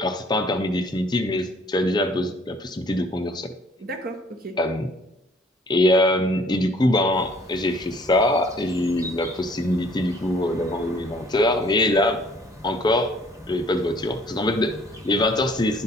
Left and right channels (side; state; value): both; normal; correlation 0.58